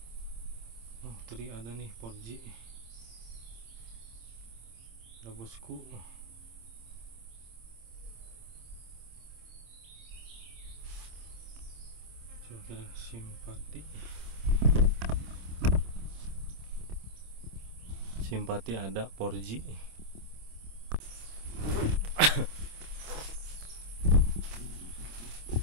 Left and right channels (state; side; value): late; left; 26 ms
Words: Oh, tadi ada nih Porji. Ada bosku. Coba kita simpati. Simpati ada Porji.